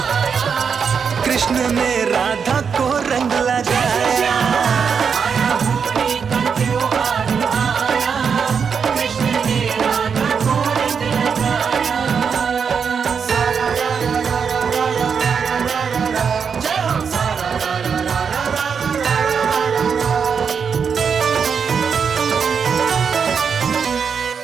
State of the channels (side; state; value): left; quieter; 6.4 dB